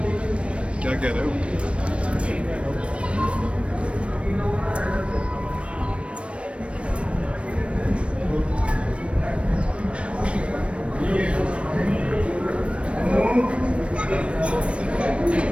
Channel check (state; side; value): late; left; 0.060 ms